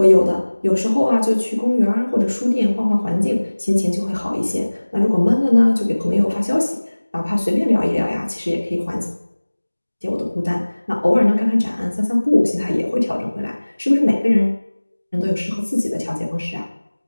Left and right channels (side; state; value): both; inverted; correlation -1.00